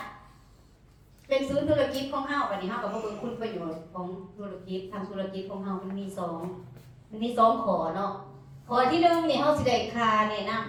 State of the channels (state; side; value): identical; both; correlation 1.00